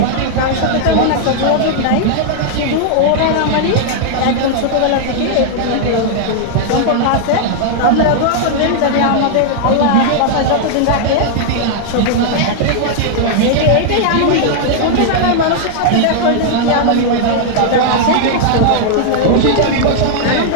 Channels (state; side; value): different; both; correlation -0.01